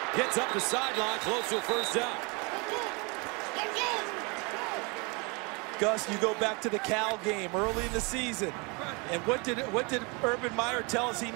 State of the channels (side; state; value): left; quieter; 30.0 dB